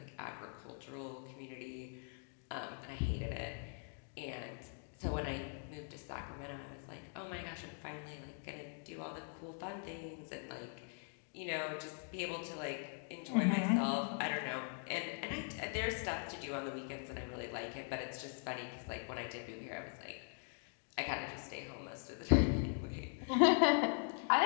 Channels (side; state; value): right; silent; 50 dB below the other